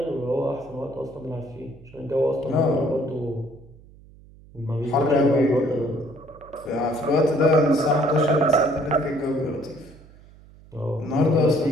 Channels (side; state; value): right; noise; hum, 23 dB below the sound